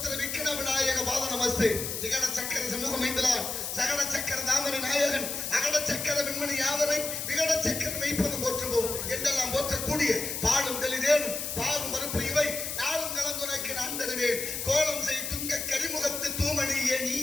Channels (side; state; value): left; noise; hiss, 4 dB below the sound